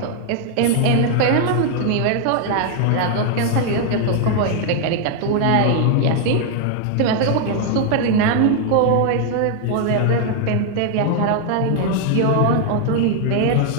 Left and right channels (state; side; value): different; both; correlation 0.00